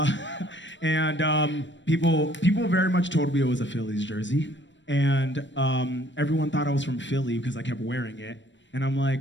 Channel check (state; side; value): late; right; 0.53 ms